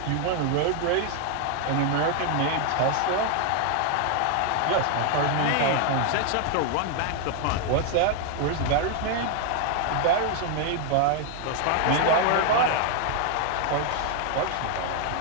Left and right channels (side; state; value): both; different; correlation 0.00